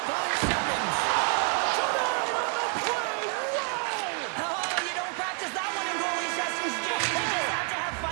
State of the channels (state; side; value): quieter; left; 38.4 dB